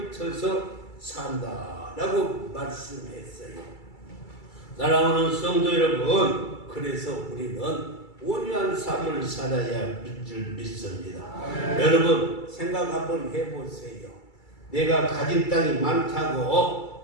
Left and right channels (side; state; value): right; late; 2.3 ms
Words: 산다라고 말씀했어요. 사랑하는 성도 여러분, 그래서 우리는 온유한 삶을 살아야 할 줄 믿습니다. 여러분 생각 한번 해보세요. 내가 가진 땅이